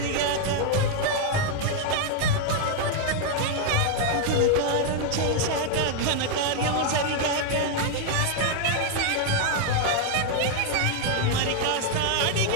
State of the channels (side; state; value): both; different; correlation 0.00